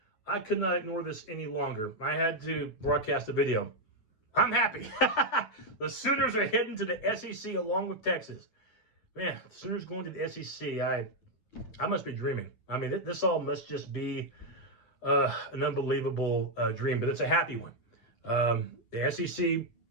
I could not ignore this any longer. I had to broadcast a video. I'm happy. The Sooners are heading to the SEC along with Texas. Man, the Sooners going to the SEC. I must be dreaming. I mean, this all must just be an unbelievable dream, but it's a happy one. The SEC,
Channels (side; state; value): right; late; 9.6 ms